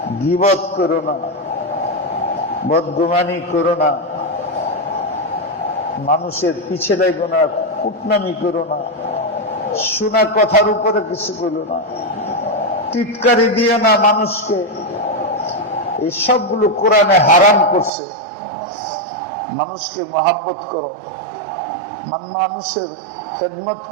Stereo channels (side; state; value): left; drops out; at 17.9 s